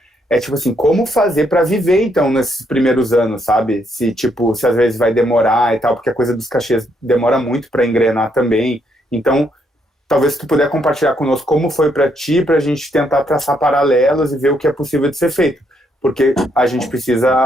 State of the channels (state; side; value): normal; both; correlation 0.74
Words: é tipo assim, como fazer para viver então nesses primeiros anos, sabe? Se tipo, se às vezes vai demorar e tal, porque a coisa dos cachês demora muito para engrenar também. Então, talvez se tu puder compartilhar conosco como foi para ti, para a gente tentar traçar paralelos e ver o que é possível de ser feito. Porque a gente